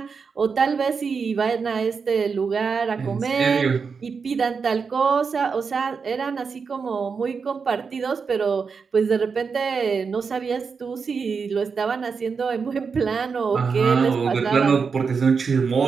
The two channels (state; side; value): quieter; left; 5.4 dB